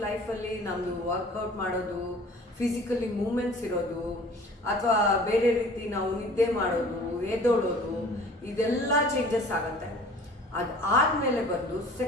ಲೈಫಲ್ಲಿ ನಮ್ಮದು ವರ್ಕೌಟ್ ಮಾಡೋದು, ಫಿಸಿಕಲಿ ಮೂಮೆಂಟ್ಸ್ ಇರೋದು, ಅಥವಾ ಬೇರೆ ರೀತಿ ನಾವು ನಿದ್ದೆ ಮಾಡೋದು, ಎದ್ದೋಳೋದು, ಇದೆಲ್ಲ ಚೇಂಜಸ್ ಆಗುತ್ತೆ. ಅದಾದಮೇಲೆ ಬಂದು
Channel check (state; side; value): normal; both; correlation 0.48